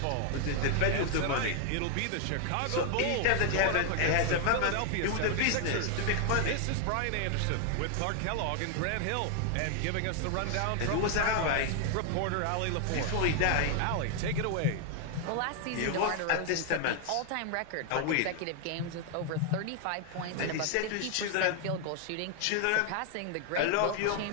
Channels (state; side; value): different; both; correlation 0.00